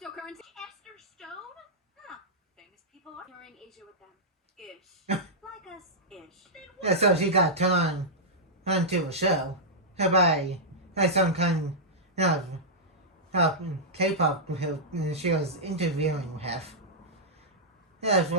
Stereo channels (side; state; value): both; normal; correlation -0.10